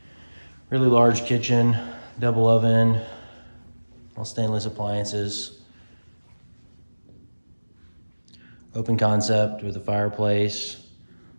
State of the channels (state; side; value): inverted; both; correlation -1.00